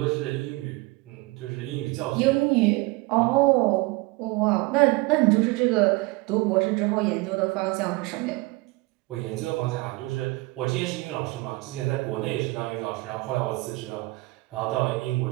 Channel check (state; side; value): quieter; left; 23.4 dB